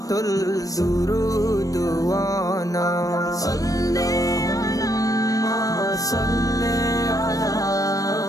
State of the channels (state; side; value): late; right; 0.17 ms